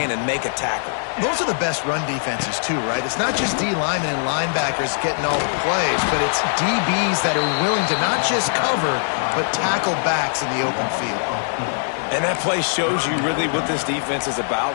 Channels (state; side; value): silent; right; digital silence